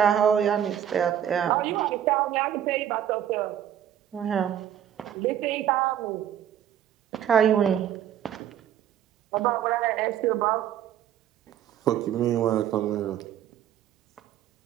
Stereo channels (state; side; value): quieter; left; 10.3 dB